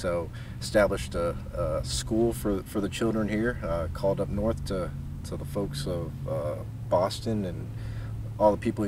established a school for the children here, called up north to the folks of Boston and all the people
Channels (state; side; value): identical; both; correlation 1.00